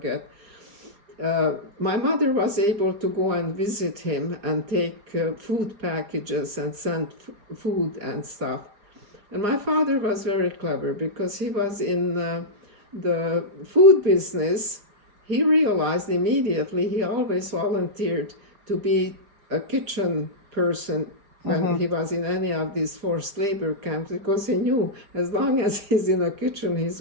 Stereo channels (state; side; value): late; left; 4.9 ms